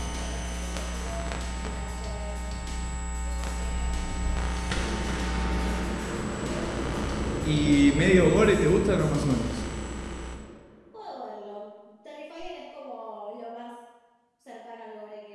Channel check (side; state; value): both; identical; correlation 1.00